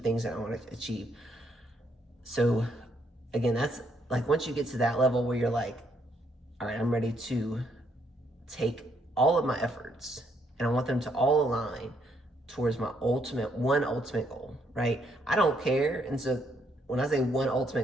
that I want to achieve. So again, that's like, once you get to that level where you're like, all right, I'm ready to take all of my efforts, and I want them to all align towards my ultimate goal, right? I don't care. And so when I say one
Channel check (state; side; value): normal; both; correlation 0.73